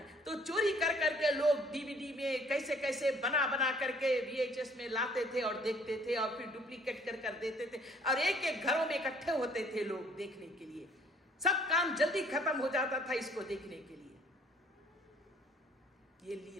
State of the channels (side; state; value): both; normal; correlation 0.58